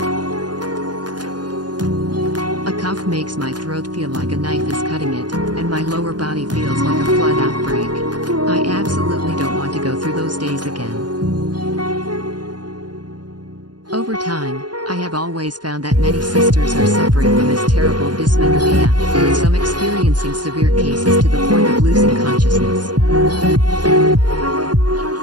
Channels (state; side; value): late; left; 0.70 ms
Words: A cough makes my throat feel like a knife is cutting it, and my lower body feels like a flood outbreak. I absolutely don't want to go through those days again. Over time, I have always found that many sisters are suffering from this terrible dysmenorrhea, with some experiencing severe cases to the point of losing consciousness.